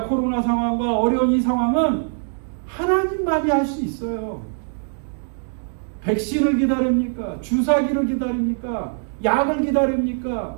코로나 상황과 어려운 이 상황은 하나님만이 할 수 있어요. 백신을 기다립니까? 주사기를 기다립니까? 약을 기다립니까?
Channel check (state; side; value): silent; left; 64 dB below the other